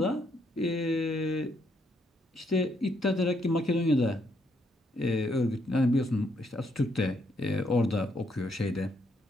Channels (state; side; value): normal; both; correlation 0.74